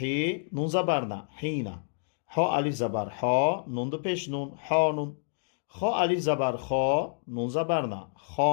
نون زبر نه، حی نه. ها الف زبر ها، نون دو پیش نون، حانون. خا الف زبر خا، نون زبر نه،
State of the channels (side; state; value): right; silent; digital silence